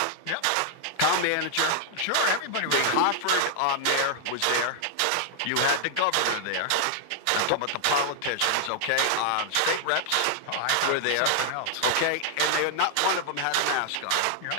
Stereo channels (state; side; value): different; both; correlation 0.00